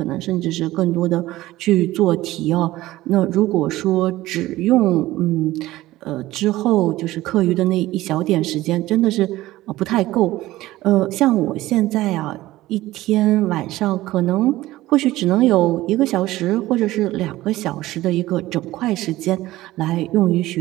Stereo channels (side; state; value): left; quieter; 16.7 dB